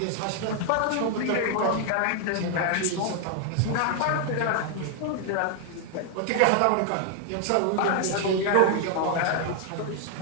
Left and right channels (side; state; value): both; different; correlation 0.00